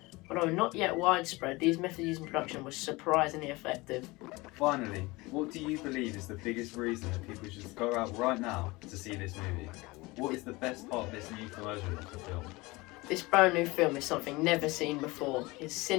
Although not yet widespread, these methods used in production were surprisingly effective. Finally, what do you believe is the biggest reason that people should go out right now to see this movie? What is the best part of this new version of the film? This brand new film is something never seen before. It's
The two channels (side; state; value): right; quieter; 22.7 dB